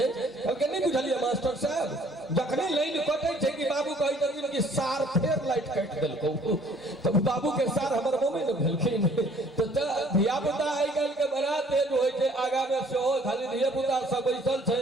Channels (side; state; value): both; normal; correlation 0.57